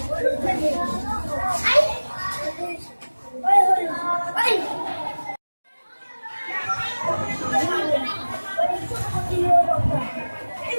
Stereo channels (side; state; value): both; inverted; correlation -1.00